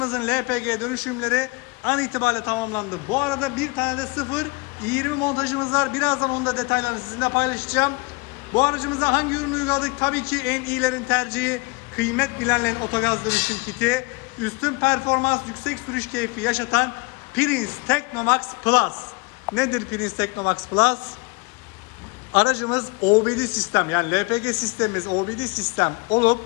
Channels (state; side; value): quieter; right; 27.7 dB